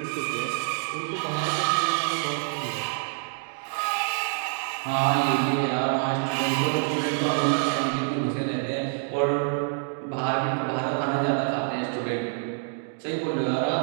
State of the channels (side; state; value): left; silent; 58 dB below the other